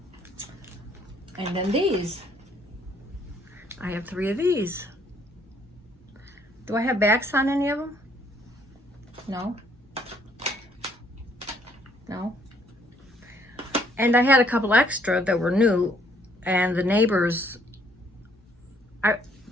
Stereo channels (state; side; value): normal; both; correlation 0.65